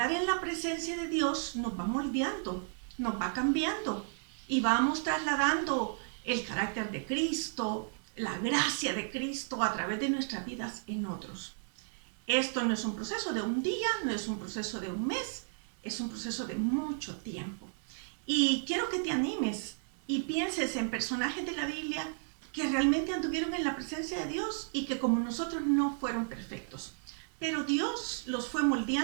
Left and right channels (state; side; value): silent; left; digital silence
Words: en la presencia de Dios nos va moldeando, nos va cambiando y vamos trasladando el carácter de Cristo, la gracia de Cristo a través de nuestras vidas en otros. Esto no es un proceso de un día, no es un proceso de un mes, es un proceso de mucho tiempo. Y quiero que te animes y pienses en personajes de la Biblia que realmente anduvieron en la presencia de Dios y que como nosotros no fueron perfectos. Pero Dios los fue